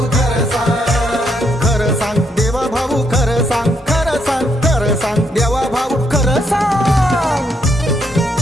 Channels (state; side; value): normal; both; correlation 0.75